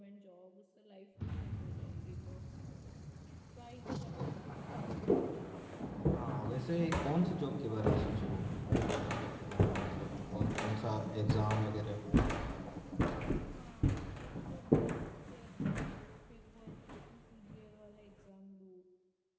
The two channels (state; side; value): identical; both; correlation 1.00